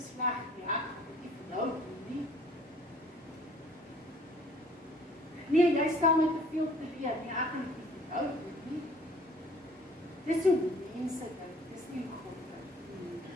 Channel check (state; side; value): normal; both; correlation 0.55